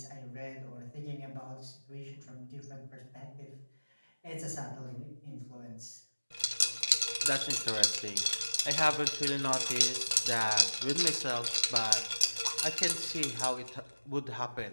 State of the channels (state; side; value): inverted; both; correlation -1.00